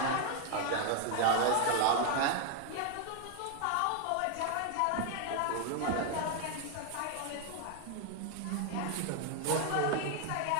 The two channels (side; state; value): both; different; correlation 0.00